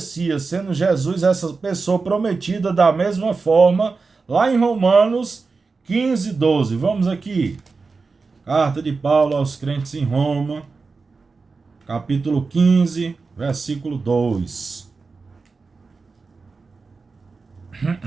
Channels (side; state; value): left; quieter; 4.3 dB